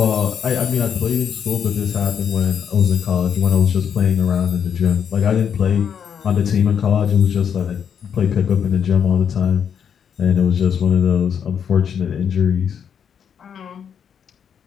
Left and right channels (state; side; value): quieter; right; 7.8 dB